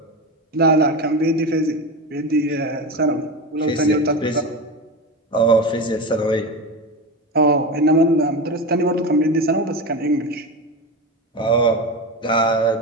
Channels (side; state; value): both; normal; correlation 0.22